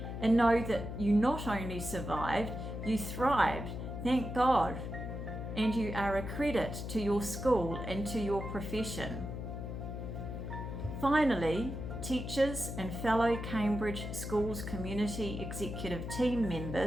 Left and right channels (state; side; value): noise; left; hum, 6 dB below the sound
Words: And know that you not only survived, you thrived, thank God, and you are a credit to your school and to your profession. Finally, teachers and fellow Cambridge Schools Community Executive Team